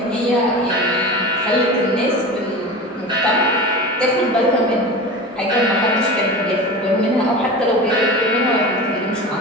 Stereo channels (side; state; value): both; normal; correlation 0.31